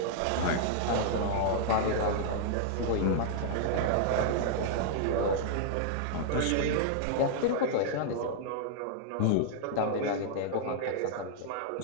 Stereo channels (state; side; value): different; both; correlation -0.01